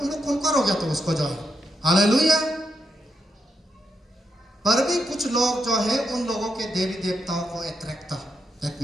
उन लोग कौन हो गया तो उसको जो है. हालेलुया. पर भी कुछ लोग जो है उन लोगों के देवी देवताओं को अट्रैक्ट था. दैट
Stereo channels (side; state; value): both; normal; correlation 0.82